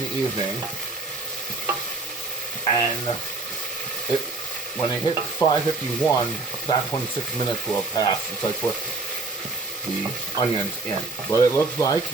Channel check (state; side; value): quieter; left; 3.5 dB